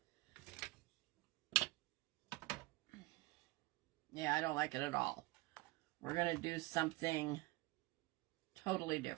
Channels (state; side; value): quieter; left; 21.3 dB